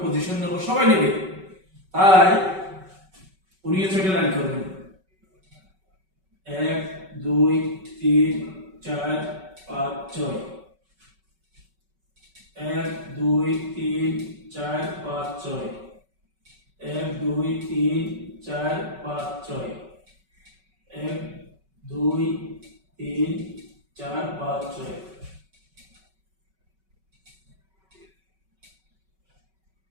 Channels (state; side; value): late; left; 5.3 ms